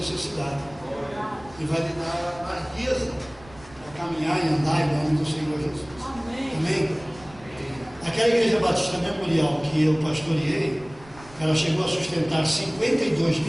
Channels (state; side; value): noise; right; rumble, 22 dB below the sound